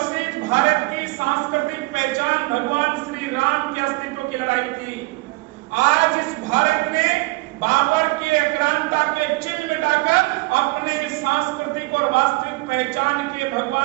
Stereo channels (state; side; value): quieter; left; 24.0 dB